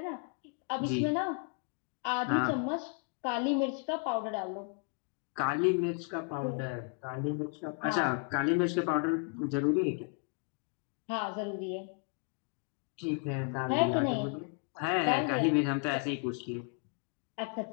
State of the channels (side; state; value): right; quieter; 39.2 dB